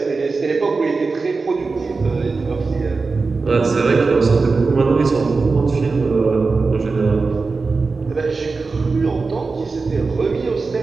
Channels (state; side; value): quieter; left; 4.2 dB